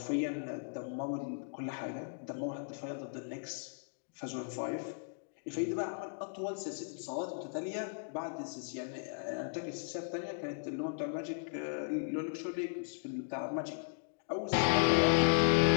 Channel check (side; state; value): right; silent; digital silence